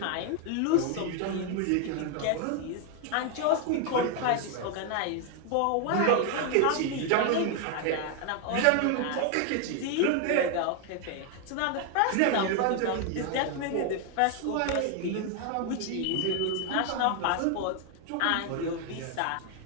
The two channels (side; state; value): both; different; correlation 0.00